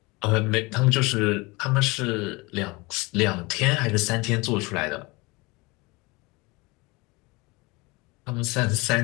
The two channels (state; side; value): quieter; right; 24.9 dB